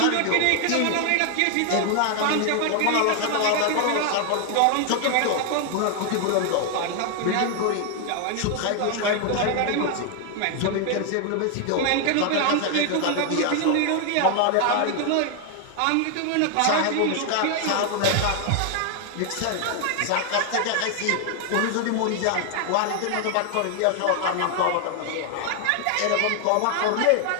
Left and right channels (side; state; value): both; different; correlation 0.00